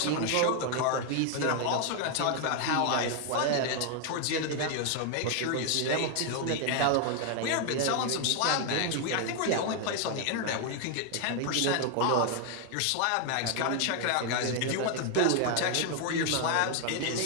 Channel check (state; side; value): different; both; correlation 0.00